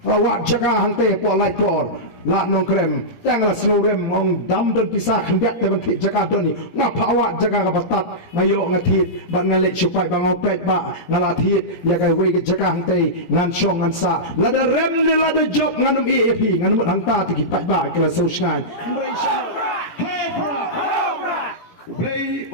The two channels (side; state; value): right; late; 17 ms